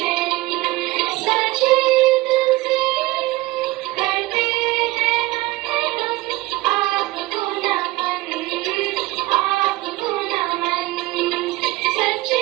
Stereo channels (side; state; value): left; quieter; 19.3 dB